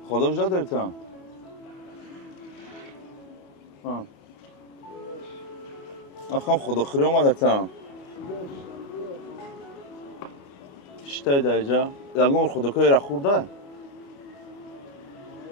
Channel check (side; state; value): right; late; 21 ms